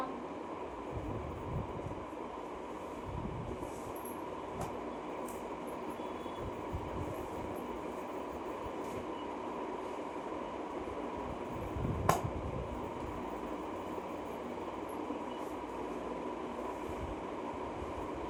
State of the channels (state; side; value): identical; both; correlation 1.00